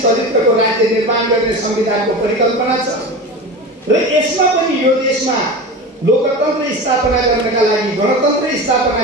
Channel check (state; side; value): normal; both; correlation 0.29